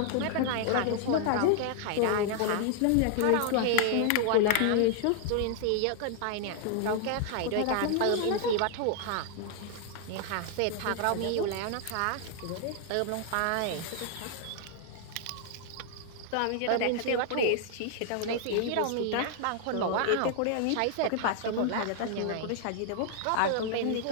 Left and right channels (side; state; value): both; different; correlation 0.00